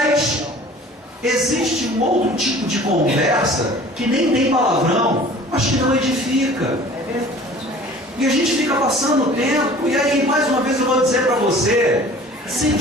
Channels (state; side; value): normal; both; correlation 0.46